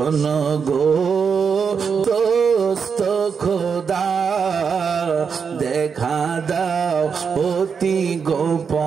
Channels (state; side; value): quieter; left; 6.1 dB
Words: গো দোস্ত খোদা দেখা দাও অতি